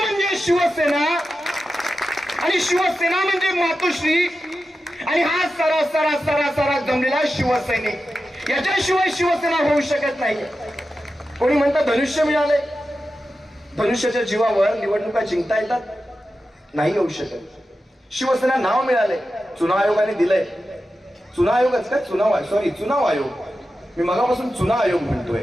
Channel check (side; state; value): both; normal; correlation 0.92